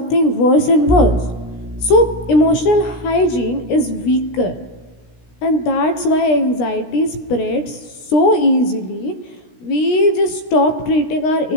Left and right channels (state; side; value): late; right; 16 ms